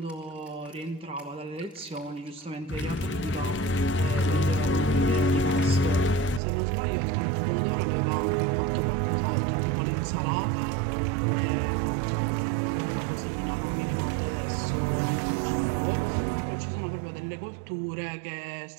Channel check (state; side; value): drops out; left; at 6.4 s